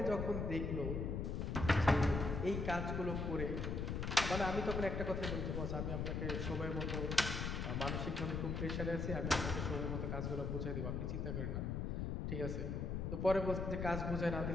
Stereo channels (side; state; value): left; noise; rumble, 1 dB below the sound